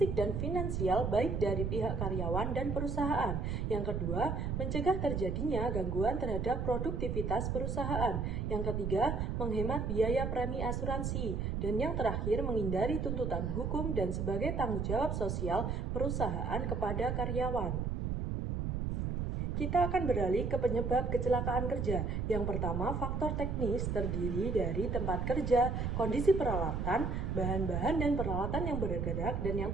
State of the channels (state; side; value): noise; right; rumble, 1 dB below the sound